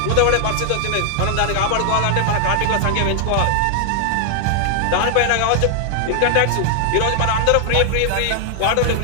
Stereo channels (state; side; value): different; both; correlation 0.00